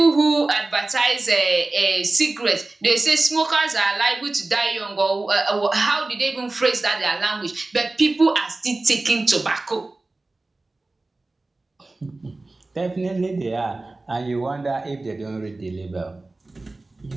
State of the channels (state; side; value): quieter; left; 3.1 dB